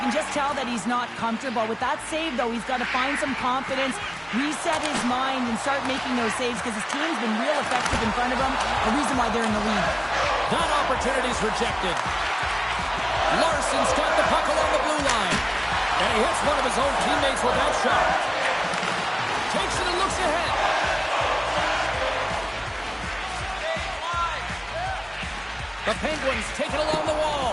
can just tell that he's not comfortable. With that save, though, he's got to find some confidence, reset his mind, and start making those saves because his team's been real effective in front of him, a reason why they're in the lead. That opportunity's rejected. Larson's got the puck along the blue line, and he hits one of his own teammates with that shot. Takes it and looks ahead. The Penguins take it along the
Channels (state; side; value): identical; both; correlation 1.00